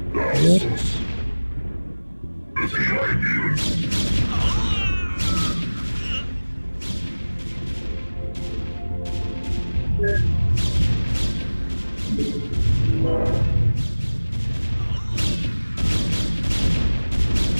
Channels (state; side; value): inverted; both; correlation -1.00